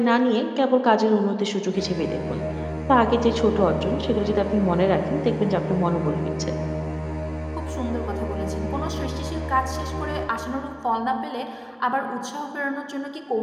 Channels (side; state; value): both; identical; correlation 1.00